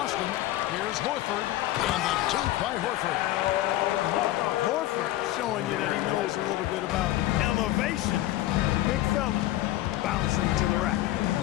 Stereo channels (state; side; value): quieter; right; 15.4 dB